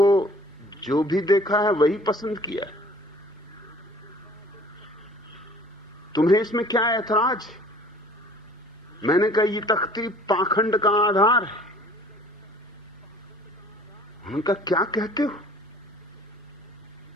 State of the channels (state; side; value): normal; both; correlation 0.51